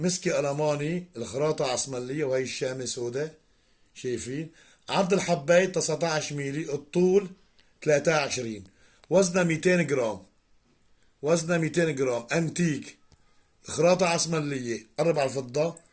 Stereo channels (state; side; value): identical; both; correlation 1.00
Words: ألماني الخراطة عسملية، وهي الشامة سوداء. شايفين عرض الحباية 19 ميلي، الطول 23، وزنها 200 جرام. وزنها 200 جرام، انتيك، خراطة عسملية. قرب على الفضة.